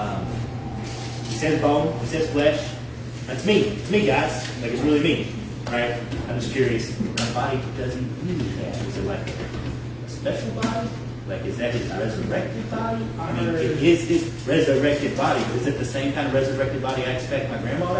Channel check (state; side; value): identical; both; correlation 1.00